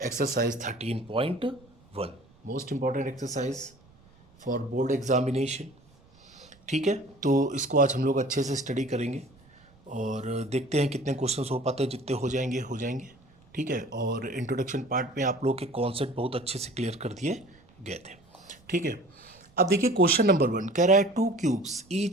13.1, most important exercise for board examination. ठीक है, तो इसको आज हम लोग अच्छे से स्टडी करेंगे और देखते हैं कितने क्वेश्चंस हो पाते हैं. जितने हो जाएंगे. ठीक है, और इंट्रोडक्शन पार्ट में आप लोग के कॉन्सेप्ट बहुत अच्छे से क्लियर कर दिए गए थे. ठीक है, अब देखिए क्वेश्चन नंबर 1 कह रहा है to cubes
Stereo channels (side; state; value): right; noise; rumble, 29 dB below the sound